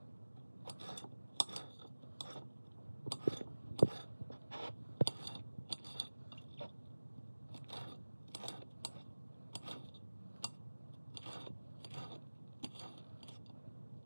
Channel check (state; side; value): inverted; both; correlation -1.00